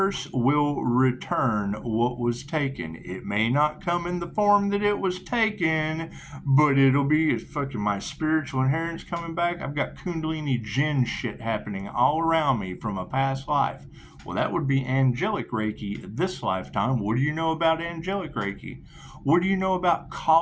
will return what was taken. It may not come in the form that it was taken, but it'll be fucking my spiritual inheritance coming back. I've got Kundalini Jinn shit happening all around me from a past life. Well, that would be angelic Reiki this lifetime. What do you know about angelic Reiki? What do you know about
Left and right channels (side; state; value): both; identical; correlation 1.00